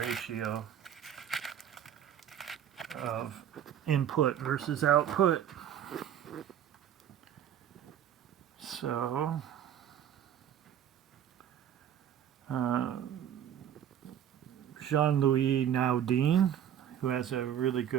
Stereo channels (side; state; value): left; quieter; 9.9 dB